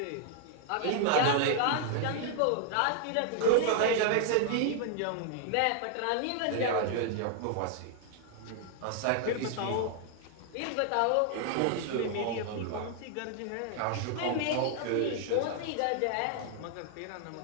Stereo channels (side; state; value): both; different; correlation 0.00